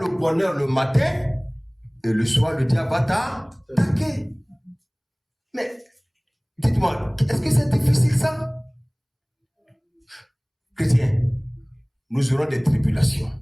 bonheur le matin et le soir le diable va t'attaquer. Mais dites-moi, est-ce que c'est difficile ça? Chrétiens, nous aurons des tribulations.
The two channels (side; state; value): both; identical; correlation 1.00